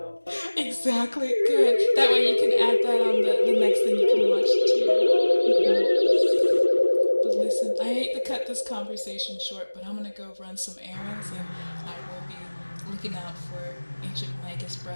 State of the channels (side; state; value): both; inverted; correlation -1.00